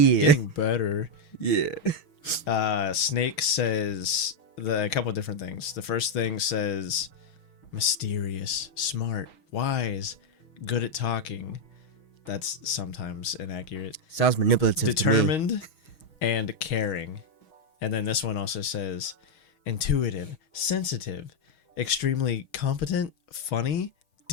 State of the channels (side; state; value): right; late; 6.3 ms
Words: Getting better. Yeah. Snake says a couple of different things. The first thing says mysterious, smart, wise, good at talking. That's sometimes inaccurate. Sounds manipulative. Determined and caring. And then this one also says intuitive, sensitive, extremely competent, funny,